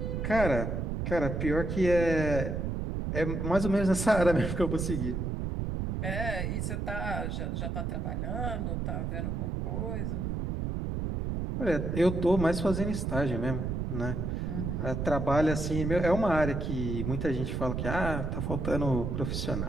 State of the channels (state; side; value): noise; right; rumble, 2 dB below the sound